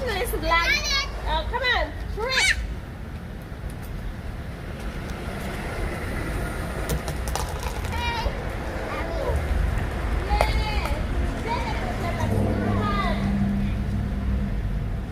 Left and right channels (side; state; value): both; identical; correlation 1.00